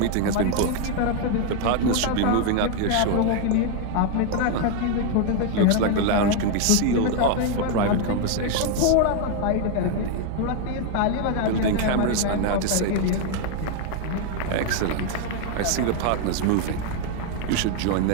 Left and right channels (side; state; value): both; different; correlation 0.01